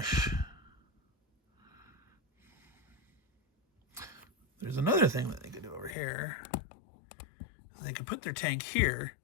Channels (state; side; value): drops out; right; at 6.0 s